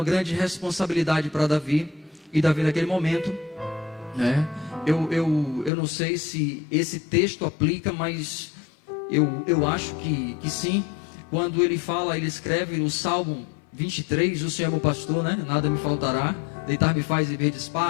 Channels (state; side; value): drops out; right; at 5.7 s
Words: grande responsabilidade para Davi, e Davi naquele momento, né, Eu não sei se esse texto aplica, mas eu acho que sim. Quando ele fala, ele escreve no Salmo 23, o Senhor é meu pastor, né? Nada me faltará. Deitar-me faz em verdes